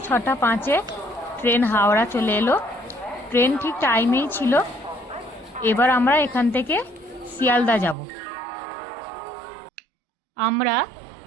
6:05 ট্রেন হাওড়া চলে এলো। ট্রেন ঠিক টাইমেই ছিল। এবার আমরা এখান থেকে শিয়ালদা যাব। আমরা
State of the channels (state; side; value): drops out; left; at 8.0 s